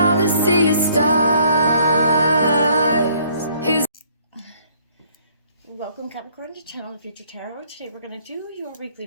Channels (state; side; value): inverted; both; correlation -0.62